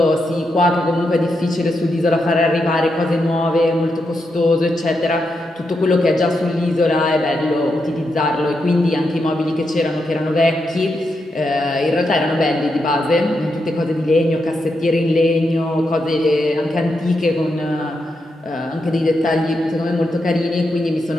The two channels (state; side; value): normal; both; correlation 0.84